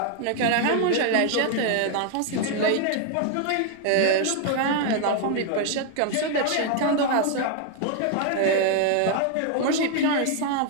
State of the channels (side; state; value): both; different; correlation 0.00